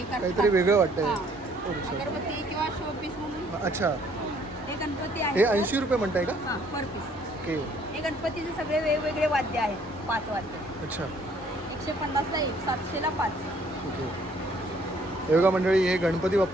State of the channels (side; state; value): both; normal; correlation 0.62